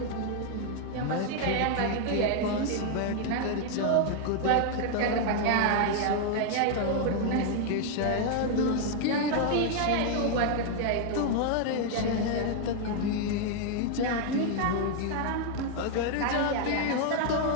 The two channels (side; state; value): both; different; correlation 0.00